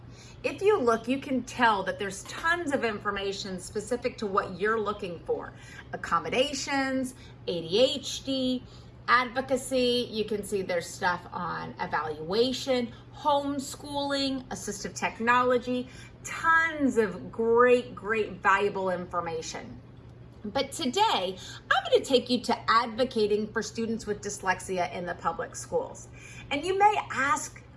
If you look, you can tell that there's tons of information specific to what you're looking for. Accommodations, ADHD, advocacy, you can see there's stuff on evaluation, homeschooling, assistive technology, tons of great, valuable information. But today, I'm going to take you to advocating for students with dyslexia in the public schools. And you may ask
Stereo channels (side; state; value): both; identical; correlation 1.00